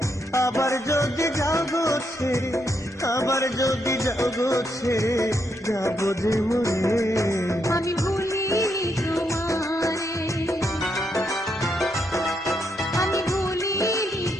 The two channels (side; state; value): both; normal; correlation 0.79